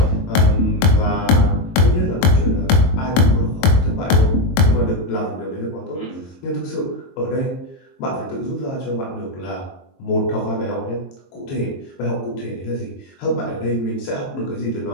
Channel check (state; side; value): late; right; 22 ms